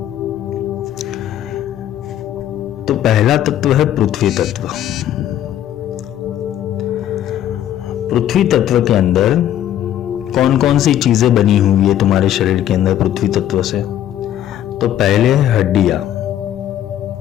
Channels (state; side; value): quieter; right; 11.5 dB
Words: तो पहला तत्व है पृथ्वी तत्व। पृथ्वी तत्व के अंदर कौन कौन सी चीजें बनी हुई है तुम्हारे शरीर के अंदर पृथ्वी तत्व से? तो पहले है हड्डियां।